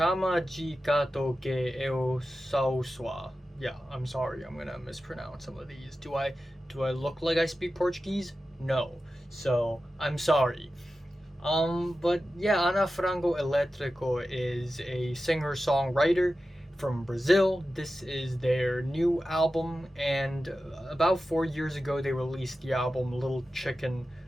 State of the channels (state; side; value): normal; both; correlation 0.93